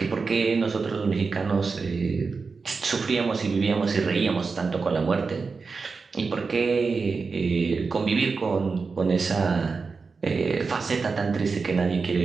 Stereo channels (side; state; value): left; quieter; 4.7 dB